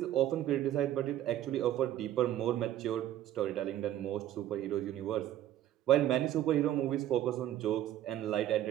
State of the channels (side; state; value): left; quieter; 12.5 dB